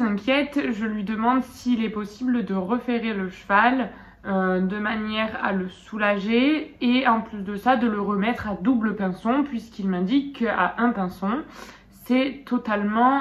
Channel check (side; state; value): both; identical; correlation 1.00